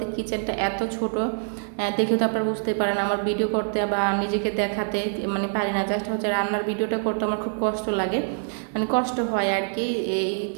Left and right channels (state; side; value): silent; left; 61 dB below the other